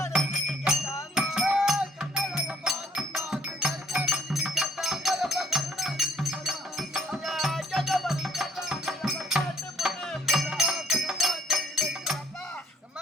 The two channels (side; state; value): both; normal; correlation 0.63